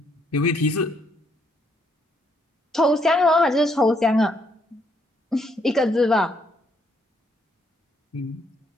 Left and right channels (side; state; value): both; normal; correlation 0.72